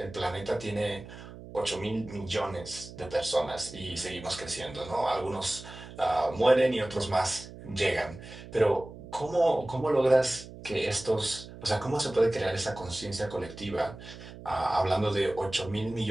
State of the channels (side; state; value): right; noise; hum, 15 dB below the sound